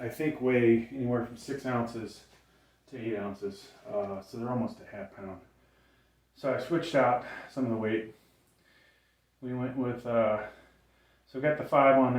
I think weigh anywhere from 6 ounces to 8 ounces. So they're almost a half pound. So I switched out some of the weight. We went with, so got the 5 on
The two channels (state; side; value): identical; both; correlation 1.00